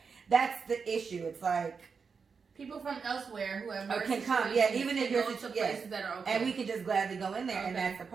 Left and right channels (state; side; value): quieter; left; 5.5 dB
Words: that's the issue. It's like, people from elsewhere who have can come, yeah, even if you're to places that are okay, and we can just gladly go in there, and that's the